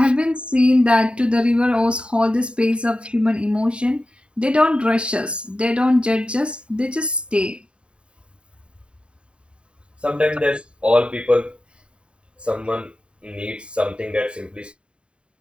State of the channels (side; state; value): left; late; 0.055 ms